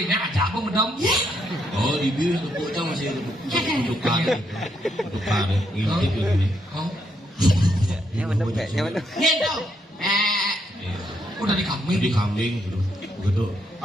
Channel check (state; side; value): normal; both; correlation 0.76